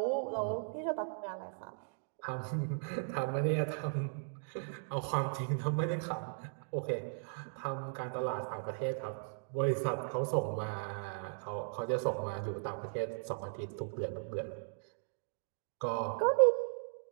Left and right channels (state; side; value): silent; left; digital silence